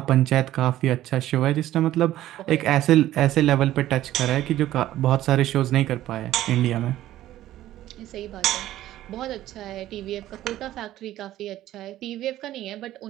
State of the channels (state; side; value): quieter; left; 14.0 dB